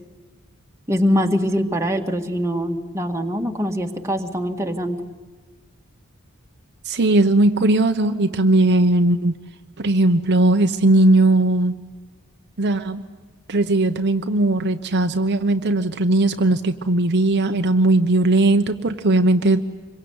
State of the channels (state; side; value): normal; both; correlation 0.57